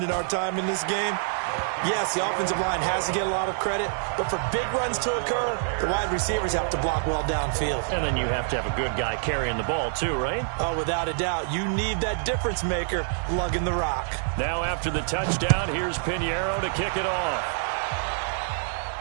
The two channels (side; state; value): left; silent; digital silence